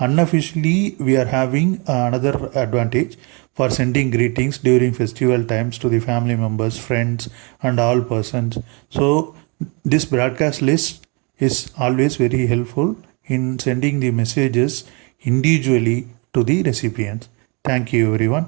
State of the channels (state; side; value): quieter; left; 31.8 dB